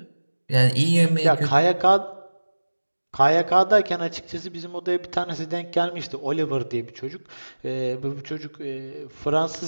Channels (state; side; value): inverted; both; correlation -1.00